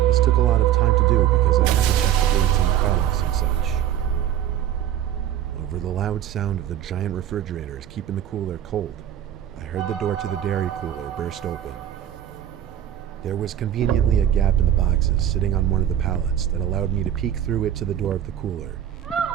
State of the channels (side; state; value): left; quieter; 10.9 dB